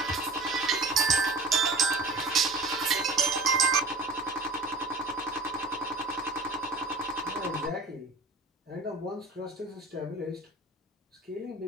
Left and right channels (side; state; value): left; quieter; 3.2 dB